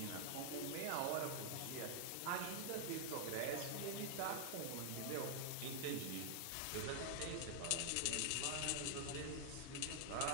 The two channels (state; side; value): different; both; correlation 0.00